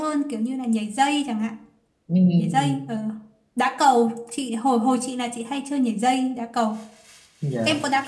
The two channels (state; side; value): identical; both; correlation 1.00